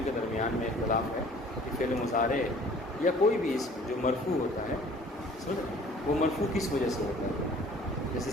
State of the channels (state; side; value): normal; both; correlation 0.51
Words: کے درمیان میں اختلاف ہے کہ فعل مضارع یا کوئی بھی اسم جو مرفوع ہوتا ہے وہ مرفوع کس وجہ سے ہوتا ہے۔ جیسے